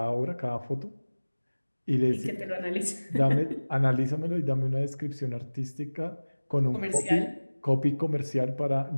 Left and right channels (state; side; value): inverted; both; correlation -1.00